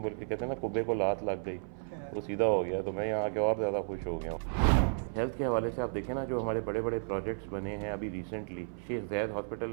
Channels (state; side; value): silent; left; 56 dB below the other